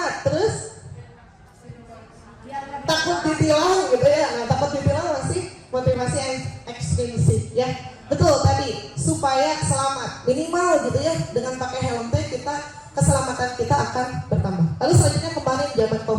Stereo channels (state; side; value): identical; both; correlation 1.00